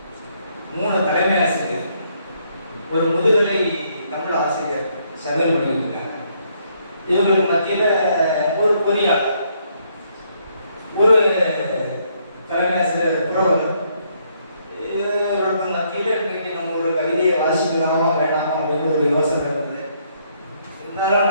3 தலைமை ஆசிரியர், ஒரு முதுகலை தமிழ் ஆசிரியர் சமையல் பண்ணிட்டு இருக்காங்க. இவங்களுக்கு மத்தியில் ஒரு பொறியாளர், ஒரு தலைமை ஆசிரியர் புரவலர். இவர்களுக்கு மத்தியில் இன்றைக்கு நம்ம ஒரு கவிதையை வாசிக்கலாமா வேண்டாமா அப்படின்னு ஒரு யோசனை இருந்தது. இருந்தாலும்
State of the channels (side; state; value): both; inverted; correlation -0.71